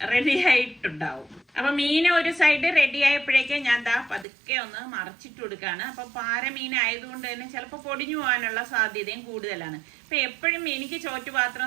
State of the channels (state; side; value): drops out; left; at 4.2 s